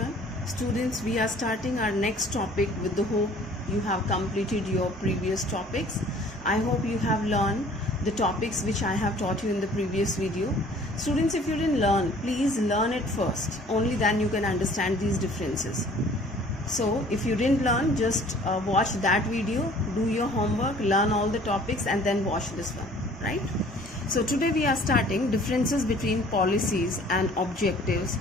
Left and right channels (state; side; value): normal; both; correlation 0.52